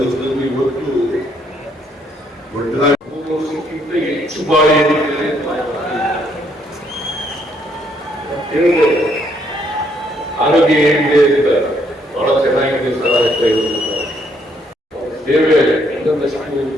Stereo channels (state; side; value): normal; both; correlation 0.70